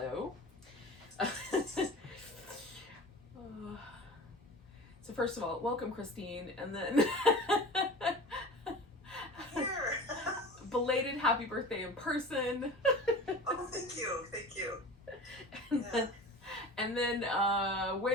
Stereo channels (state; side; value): normal; both; correlation 0.36